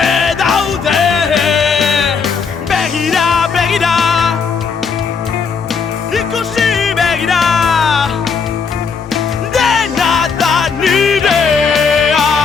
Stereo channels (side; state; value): right; quieter; 5.6 dB